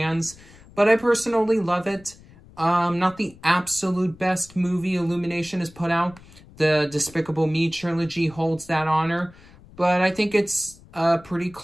but I personally love it. Not the absolute best movie Illumination has put out. The Despicable Me trilogy holds that honor, but I think it's a pretty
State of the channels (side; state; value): left; noise; rumble, 23 dB below the sound